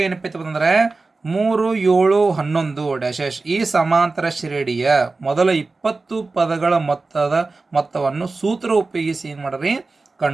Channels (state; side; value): quieter; left; 3.7 dB